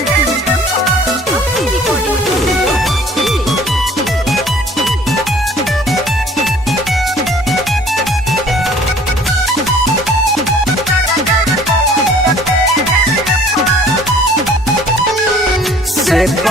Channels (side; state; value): both; normal; correlation 0.53